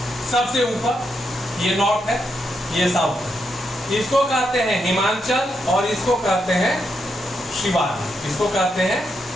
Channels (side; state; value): both; normal; correlation 0.81